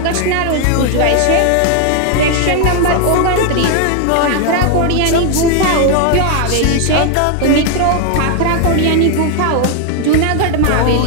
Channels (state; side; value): different; both; correlation 0.01